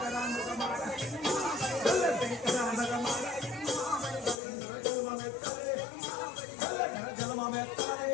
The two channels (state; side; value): drops out; right; at 4.4 s